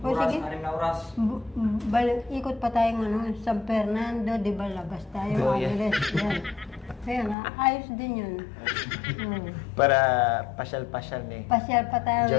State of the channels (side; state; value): right; drops out; at 7.4 s